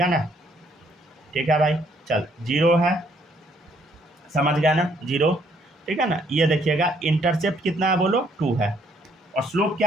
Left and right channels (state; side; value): normal; both; correlation 0.67